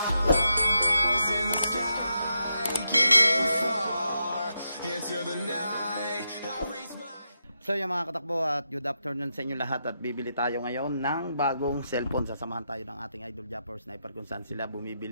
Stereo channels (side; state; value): both; inverted; correlation -0.84